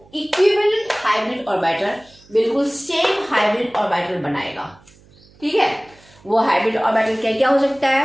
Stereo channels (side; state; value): right; noise; hum, 28 dB below the sound